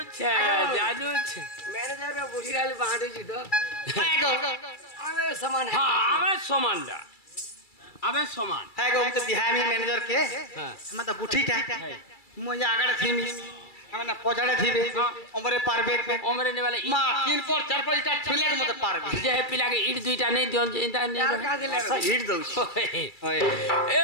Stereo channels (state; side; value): late; right; 2.3 ms